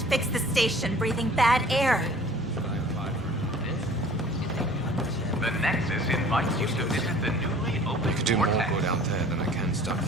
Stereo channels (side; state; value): both; normal; correlation 0.49